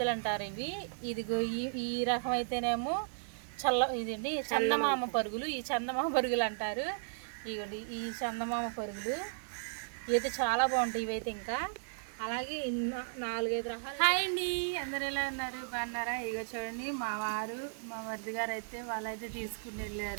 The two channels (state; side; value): silent; left; digital silence